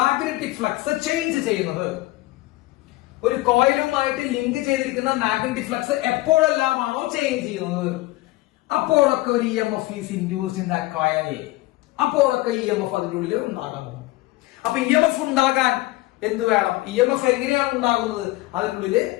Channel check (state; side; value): quieter; right; 19.1 dB